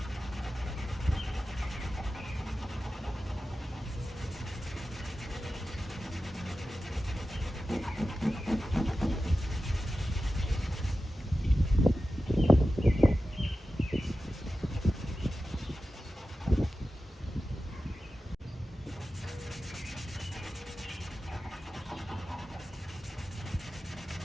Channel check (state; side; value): normal; both; correlation 0.93